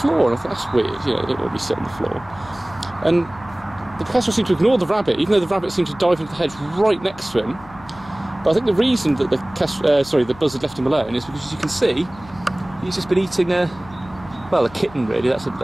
and I thought, that's weird, you know, they don't want to be sit on the floor. And the kestrel seemed to ignore the rabbit, even though the rabbit seemed to dive into the hedge right next to him. But I think the reason that the buzzard left him alone is because, as you can see, he's just been eating a kitten really. That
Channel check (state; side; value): noise; left; hum, 21 dB below the sound